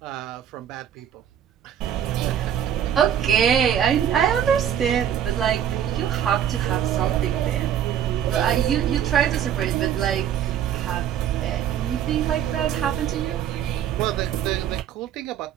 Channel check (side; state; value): left; quieter; 9.7 dB